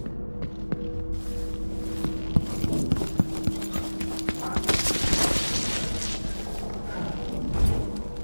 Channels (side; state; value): both; inverted; correlation -1.00